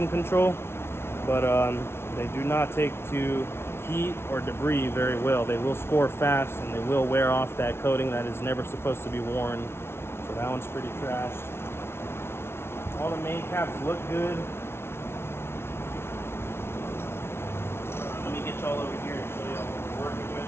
control, but they do not take to heat or debris very well. They will score fast and they will wear off that coating that is never supposed to be worn. So that one's pretty trashed. All the main caps look good. Let me get y'all over here and show y'all what we're working with.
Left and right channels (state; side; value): late; right; 0.12 ms